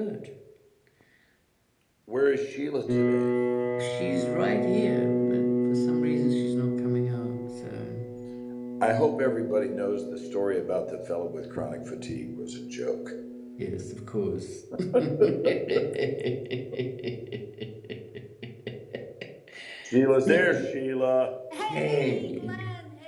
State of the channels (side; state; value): both; identical; correlation 1.00